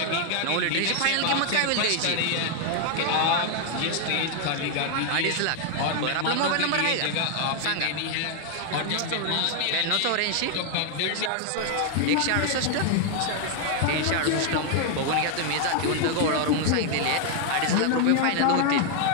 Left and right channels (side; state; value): both; different; correlation 0.00